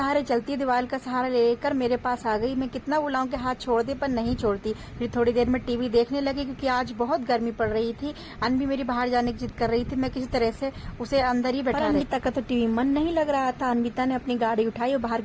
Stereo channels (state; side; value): identical; both; correlation 1.00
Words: चलती है, दीवार का सहारा लेकर मेरे पास आ गई। मैं कितना बुलाऊं कि हाथ छोड़ दे, पर नहीं छोड़ती। फिर थोड़ी देर में टीवी देखने लगी, क्योंकि आज बहुत गर्मी पड़ रही थी। अनबी मेरी बाहर जाने की जिद कर रही थी, मैं किसी तरह से उसे अंदर ही बैठा। अनमिता का तो टीवी मन नहीं लग रहा था। अनमिता ने अपनी गाड़ी उठाई और बाहर